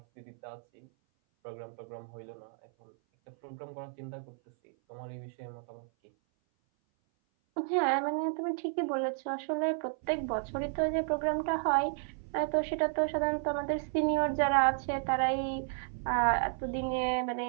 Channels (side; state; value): left; silent; 56 dB below the other